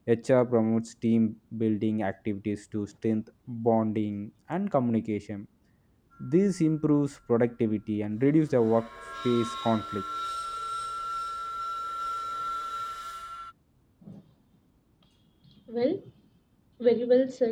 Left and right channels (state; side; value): identical; both; correlation 1.00